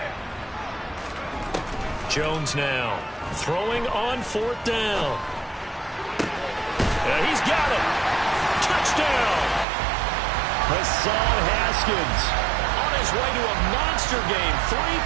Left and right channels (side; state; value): left; drops out; at 9.7 s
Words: Jones now throwing on 4th down. He's got it. Touchdown. Hassan Haskins on his way to a monster game. 3